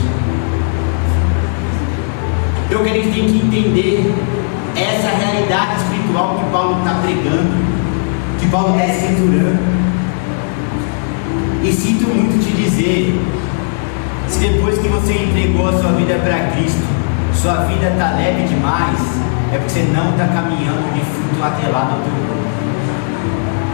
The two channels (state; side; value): silent; right; digital silence